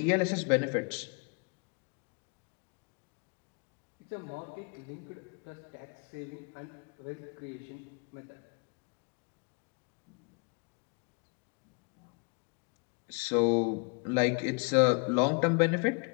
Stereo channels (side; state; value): right; quieter; 35.0 dB